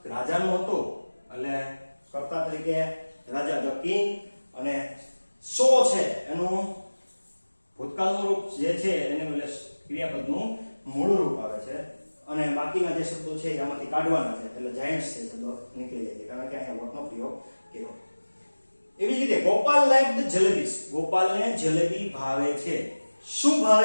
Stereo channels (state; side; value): inverted; both; correlation -1.00